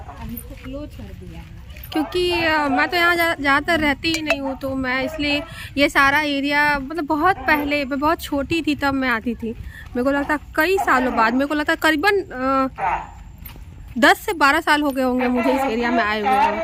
इसको क्लोज कर दिया है क्योंकि मैं तो यहाँ ज़्यादातर रहती ही नहीं हूँ, तो मैं इसलिए ये सारा एरिया, मतलब बहुत पहले मैं बहुत छोटी थी तब मैं आती थी। मेरे को लगता कई सालों बाद, मेरे को लगता करीबन 10 से 12 साल हो गए होंगे मुझे इस एरिया में आए हुए।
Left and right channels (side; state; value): both; identical; correlation 1.00